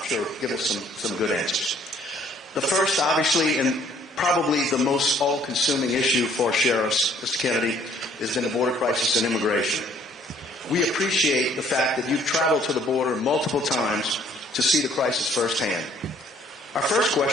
sure, give us some good answers. The first, obviously, and probably the most all-consuming issue for sheriffs, Mr. Kennedy, has been the border crisis and immigration. We appreciate the fact that you've traveled to the border multiple times to see the crisis firsthand. Our first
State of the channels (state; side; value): normal; both; correlation 0.61